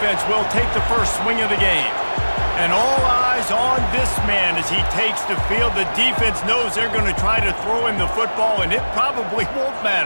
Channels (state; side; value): inverted; both; correlation -1.00